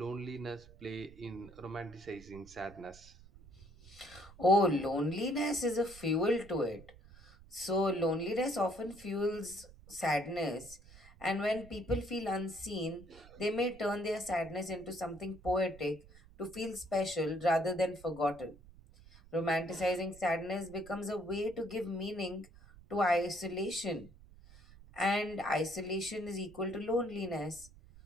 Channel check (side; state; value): right; noise; rumble, 21 dB below the sound